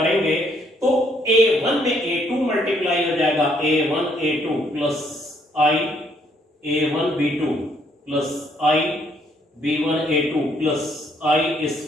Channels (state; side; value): normal; both; correlation 0.69